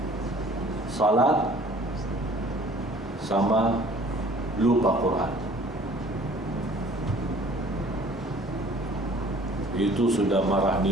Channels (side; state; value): both; normal; correlation 0.52